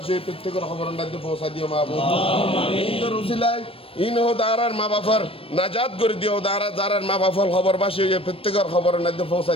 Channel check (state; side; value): late; right; 0.27 ms